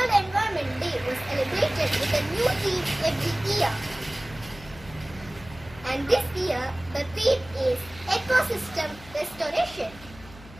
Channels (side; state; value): left; noise; hum, 19 dB below the sound